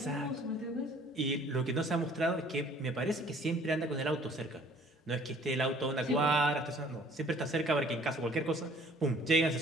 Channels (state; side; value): normal; both; correlation 0.55